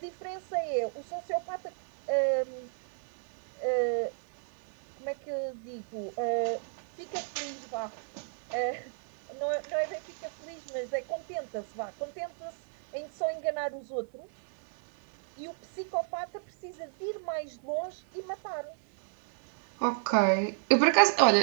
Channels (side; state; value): left; silent; 56 dB below the other